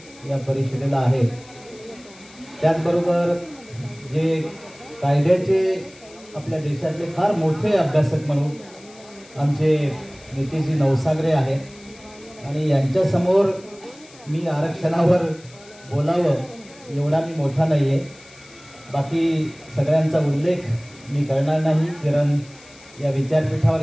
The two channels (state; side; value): noise; left; hiss, 23 dB below the sound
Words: या परिषदेला आहे. त्याचबरोबर जे कायद्याचे आपल्या देशातले फार मोठे अभ्यासक म्हणून आमचे नितीशजी नवसागरे आहेत आणि यांच्यासमोर मी आरक्षणावर बोलावं एवढा मी मोठा नाही आहे. बाकी सगळ्यांचा उल्लेख मी करणार नाही, कारण या विचारपीठावर